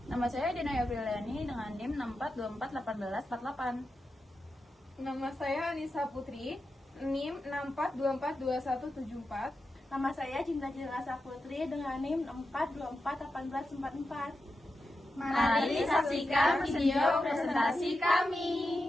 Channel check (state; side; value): normal; both; correlation 0.90